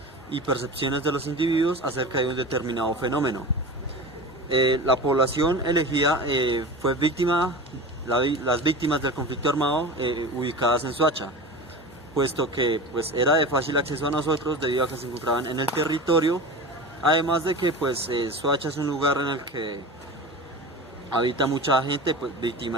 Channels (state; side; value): normal; both; correlation 0.31